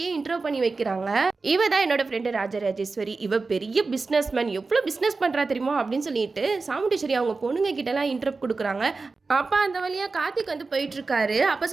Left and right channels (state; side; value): quieter; left; 4.0 dB